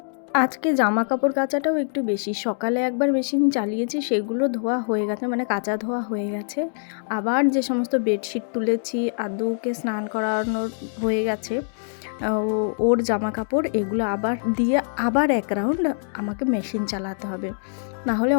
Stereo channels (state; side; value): silent; right; digital silence